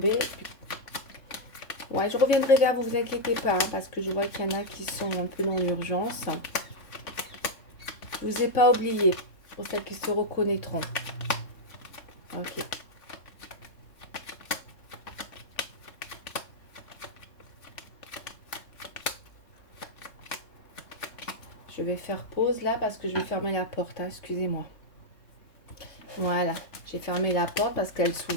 Ouais, je reviendrai vers vous, vous inquiétez pas, hein, parce que je vois qu'il y en a qui sont un peu dans l'urgence. Je vous ai pas oublié, pour celles qui se reconnaîtront. Ok. Je vais faire pause là parce que je vais fermer la porte, hein, excusez-moi. Voilà, j'ai fermé la porte parce qu'elle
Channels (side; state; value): right; late; 3.5 ms